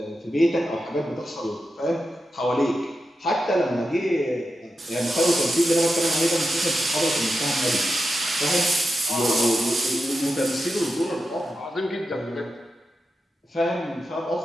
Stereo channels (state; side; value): normal; both; correlation 0.89